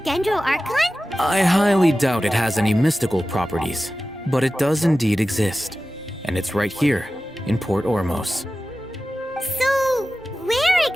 Archon? I highly doubt it has any mystical properties, but it does indeed exist. And it's right here, in Port Ormos. So, where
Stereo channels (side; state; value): right; noise; rumble, 28 dB below the sound